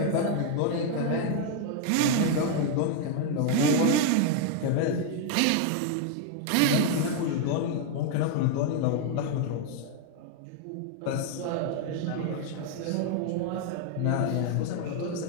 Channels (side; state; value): both; different; correlation 0.00